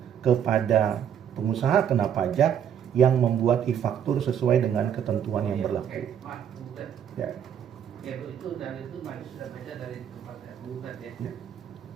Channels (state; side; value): quieter; left; 8.9 dB